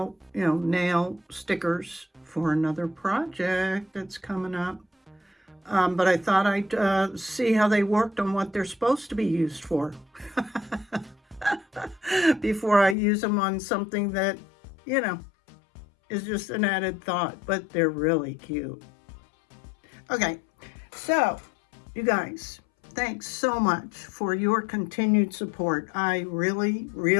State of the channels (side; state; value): right; drops out; at 13.0 s